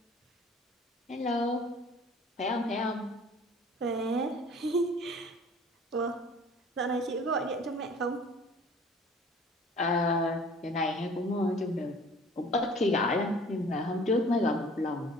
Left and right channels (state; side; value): normal; both; correlation 0.49